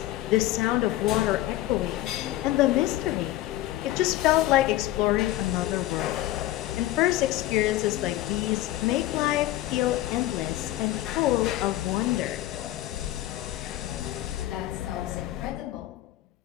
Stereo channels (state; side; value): quieter; right; 15.5 dB